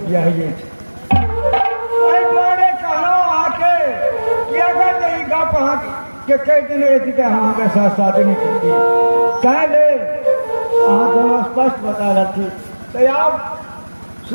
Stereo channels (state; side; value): inverted; both; correlation -1.00